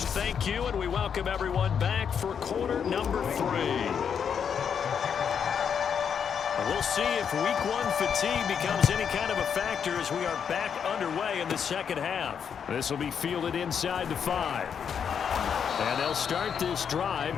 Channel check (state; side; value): quieter; right; 7.4 dB